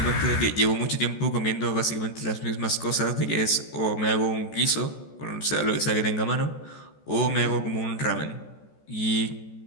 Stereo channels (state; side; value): late; right; 14 ms